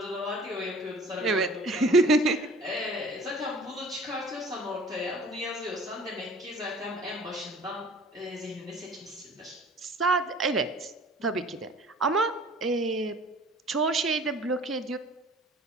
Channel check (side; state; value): both; normal; correlation 0.48